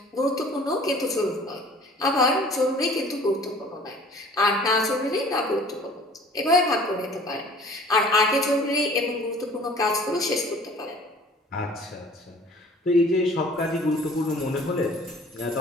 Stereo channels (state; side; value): normal; both; correlation 0.50